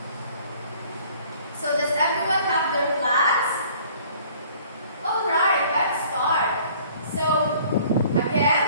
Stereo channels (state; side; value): inverted; both; correlation -0.54